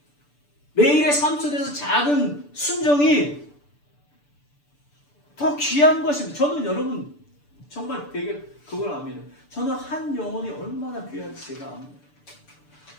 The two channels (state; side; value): late; right; 6.9 ms